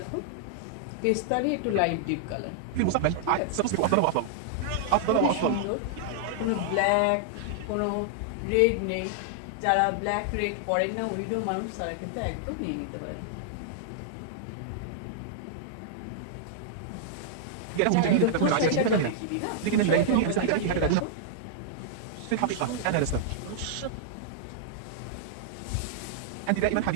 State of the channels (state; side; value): different; both; correlation -0.01